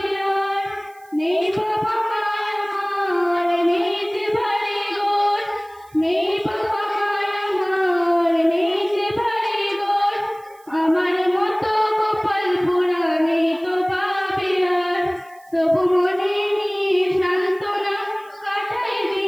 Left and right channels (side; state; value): right; noise; hiss, 29 dB below the sound